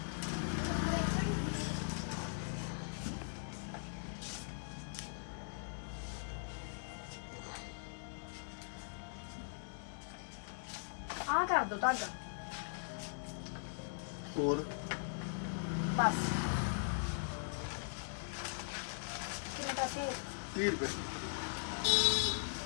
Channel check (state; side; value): silent; right; 51 dB below the other